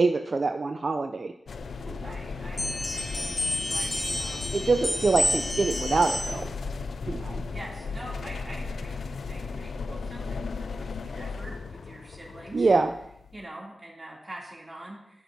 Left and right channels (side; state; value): both; normal; correlation 0.92